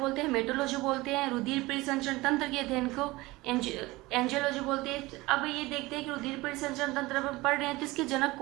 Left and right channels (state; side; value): quieter; left; 20.8 dB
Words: हैं, मेटोलॉजी बोलते हैं। रुधिर परिसंचरण तंत्र के अध्ययन को एंजियोलॉजी बोलते हैं। अब ये देखते हैं कि रुधिर परिसंचरण तंत्र अपन पढ़ रहे हैं तो इसके जनक